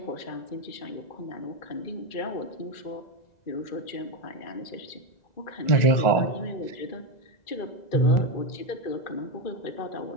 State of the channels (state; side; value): late; right; 2.0 ms